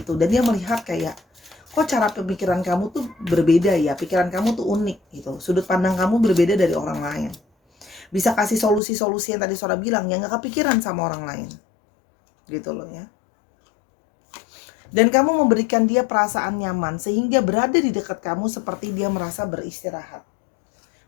itu. Dan dia melihat kayak, kok cara pemikiran kamu tuh berbeda ya? Pikiran kamu tuh unik gitu. Sudut pandang kamu berbeda dari orang lain. Bisa kasih solusi-solusi yang tadi Sora bilang yang nggak kepikiran sama orang lain. Gitu loh ya. Dan kamu memberikan dia perasaan nyaman, sehingga berada di dekat kamu seperti dia merasa beristirahat.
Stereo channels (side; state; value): right; drops out; at 8.8 s